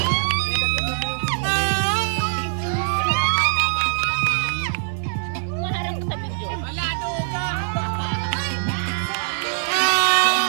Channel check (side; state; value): left; silent; digital silence